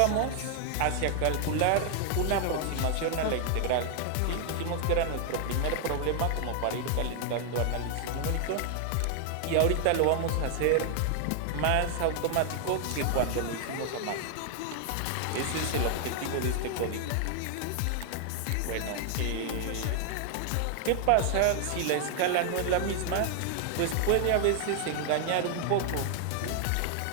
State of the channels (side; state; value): both; different; correlation 0.00